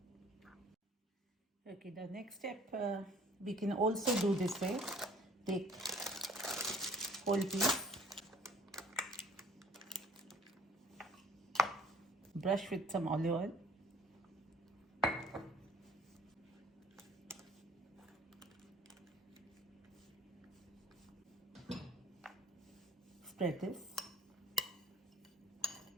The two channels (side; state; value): both; normal; correlation 0.53